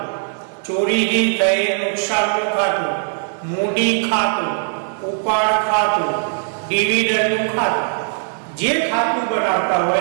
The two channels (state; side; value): silent; left; 66 dB below the other